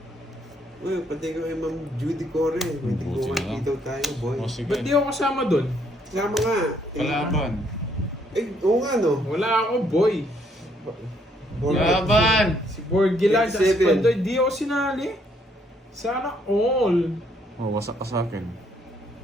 Uy, pati ko kay Ma'am Judy Core. May Buti tiguan na lang. dito tayo, boy. O, sige. Ba't di ako kasama doon? Sama nga. Kalaban. Oo nga, no? Wala ako, boy. Laban! Si Borgi lang, sa 27. Pandoy, di ako sinali. Sana all. Oh, wasak ka sa akin.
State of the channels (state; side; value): normal; both; correlation 0.69